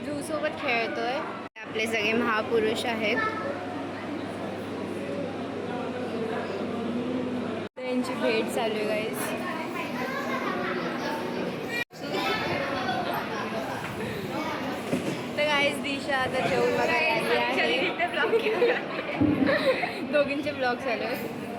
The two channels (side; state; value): both; identical; correlation 1.00